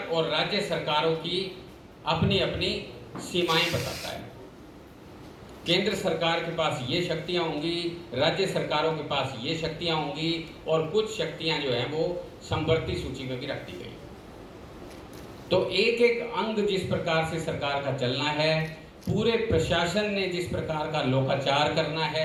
और राज्य सरकारों की अपनी अपनी सीमाएं बताता है। केंद्र सरकार के पास ये शक्तियां होंगी, राज्य सरकारों के पास ये शक्तियां होंगी, और कुछ शक्तियां जो हैं वो संवर्ती सूची में भी रख दी गई। तो एक एक अंग जिस प्रकार से सरकार का चलना है, पूरे प्रशासन ने जिस प्रकार का लोकाचार करना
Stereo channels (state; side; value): identical; both; correlation 1.00